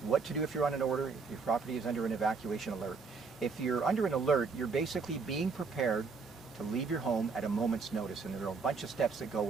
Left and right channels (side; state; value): left; quieter; 4.8 dB